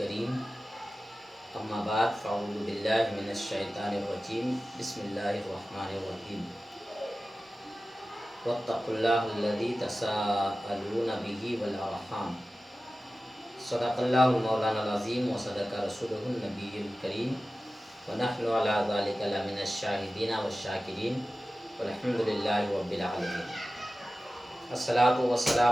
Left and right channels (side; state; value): both; normal; correlation 0.95